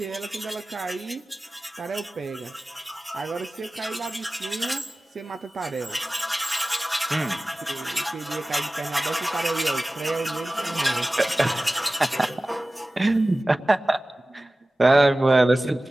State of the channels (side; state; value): both; normal; correlation 0.97